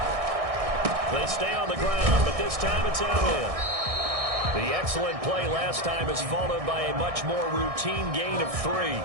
They stay on the ground, but this time it's out in. The excellent play last time is followed by a much more routine gain of 3.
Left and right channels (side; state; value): left; late; 1.6 ms